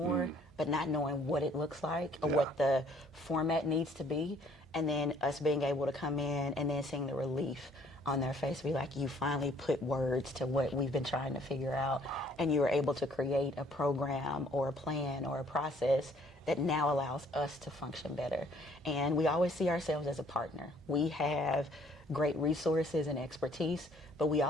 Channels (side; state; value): both; normal; correlation 0.60